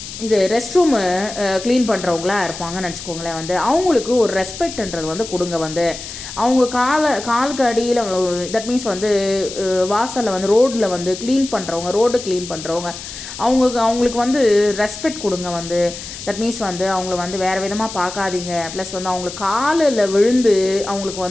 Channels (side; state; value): left; noise; hiss, 11 dB below the sound